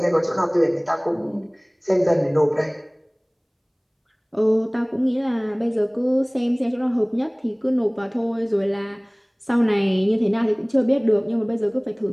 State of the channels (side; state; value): both; identical; correlation 1.00